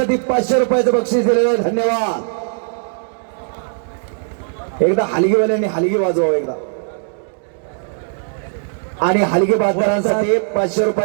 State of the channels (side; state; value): left; silent; 67 dB below the other